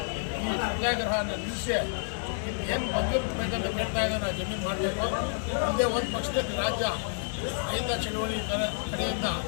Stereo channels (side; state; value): right; silent; digital silence